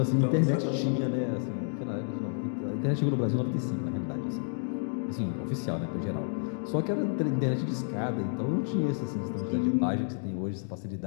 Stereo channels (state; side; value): silent; right; digital silence